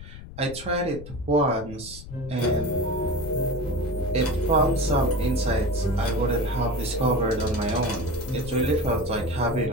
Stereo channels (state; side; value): noise; left; rumble, 14 dB below the sound